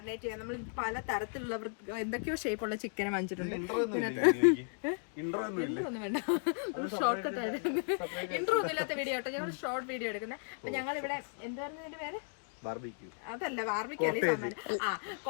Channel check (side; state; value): right; silent; 54 dB below the other